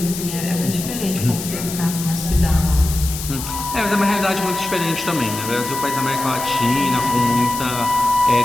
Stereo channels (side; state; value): left; noise; hiss, 8 dB below the sound